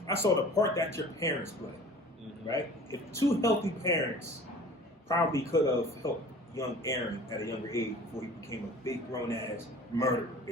the part that your parents play, right? If two healthy parents probably could have helped young Aaron at a younger age before he became a big grown ass murderer,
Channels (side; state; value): both; normal; correlation 0.44